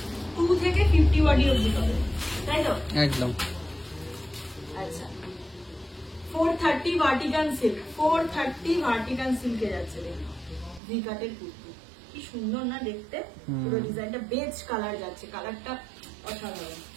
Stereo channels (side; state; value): left; drops out; at 10.8 s